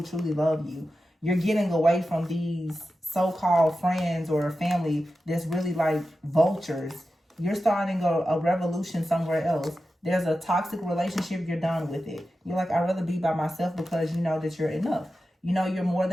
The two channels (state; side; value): normal; both; correlation 0.92